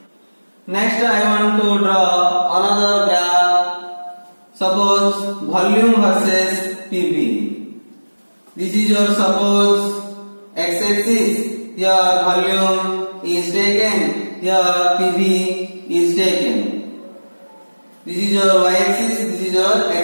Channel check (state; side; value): inverted; both; correlation -1.00